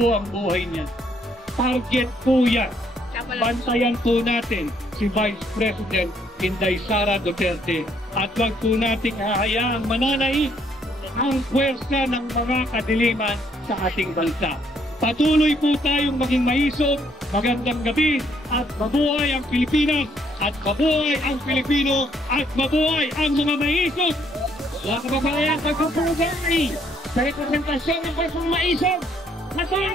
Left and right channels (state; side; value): normal; both; correlation 0.69